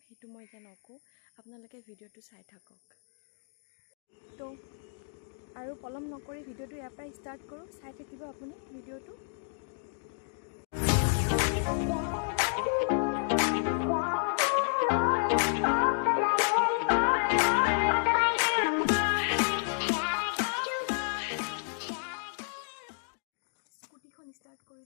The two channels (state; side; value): silent; right; digital silence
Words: সেইটো মই এতিয়া নকওঁ, আপোনালোকে ভিডিঅ'টো চাই থাকক। তো আৰু পলম নকৰি ভিডিঅ'টো ইয়াৰ পৰাই ষ্টাৰ্ট কৰোঁ, চাই থাকিব আপুনি ভিডিঅ'টো। স্কুটিখন ষ্টাৰ্ট কৰি